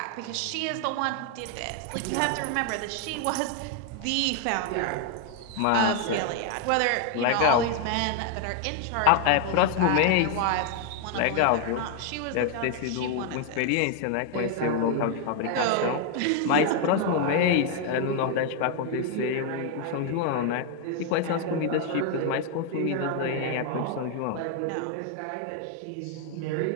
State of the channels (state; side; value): different; both; correlation 0.01